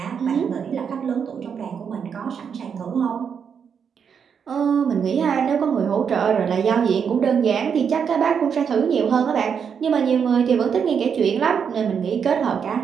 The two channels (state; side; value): quieter; left; 7.0 dB